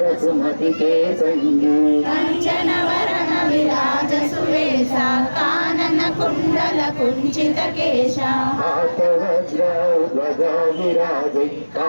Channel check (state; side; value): inverted; both; correlation -1.00